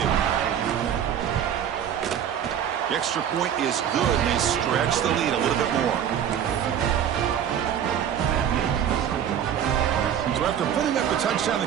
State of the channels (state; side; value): quieter; left; 9.3 dB